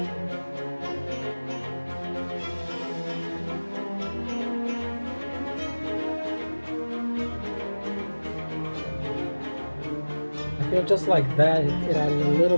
I feel just like that, it added a little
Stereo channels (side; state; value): both; inverted; correlation -1.00